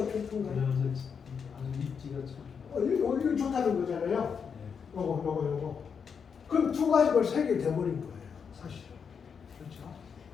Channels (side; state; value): right; quieter; 6.5 dB